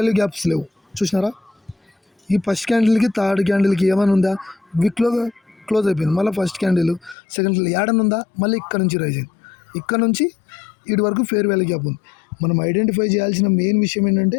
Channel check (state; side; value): drops out; right; at 7.2 s